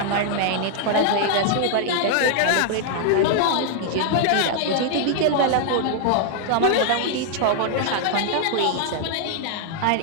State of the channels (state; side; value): different; both; correlation 0.00